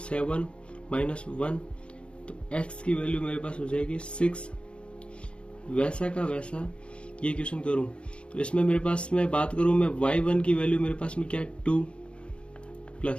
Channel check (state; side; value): late; right; 0.057 ms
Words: माइनस 1, तो x की वैल्यू मेरे पास हो जाएगी 6। वैसा का वैसा ये क्वेश्चन करूं तो इसमें मेरे पास में बात करूं मैं y1 की वैल्यू मेरे पास में क्या है 2